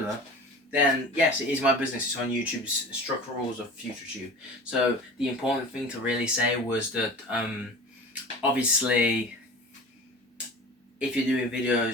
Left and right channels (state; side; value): normal; both; correlation 0.38